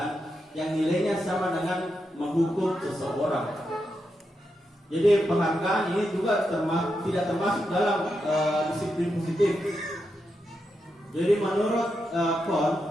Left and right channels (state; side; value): normal; both; correlation 0.85